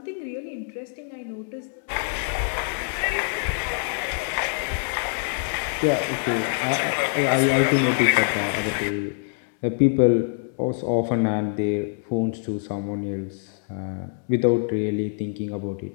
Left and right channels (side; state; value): right; silent; digital silence